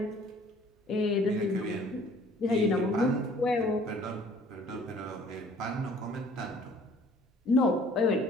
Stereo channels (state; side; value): normal; both; correlation 0.54